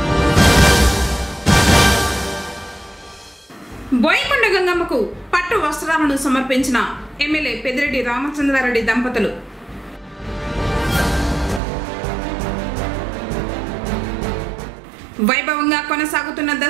బోయకొండ గంగమ్మకు పట్టు వస్త్రాలను సమర్పించిన ఎమ్మెల్యే పెద్దిరెడ్డి రామచంద్రారెడ్డి దంపతులు. వైభవంగా కొనసాగుతున్న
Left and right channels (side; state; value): left; drops out; at 11.6 s